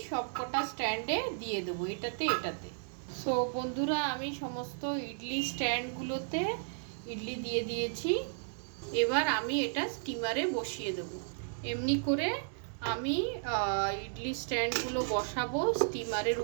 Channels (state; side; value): silent; left; 55 dB below the other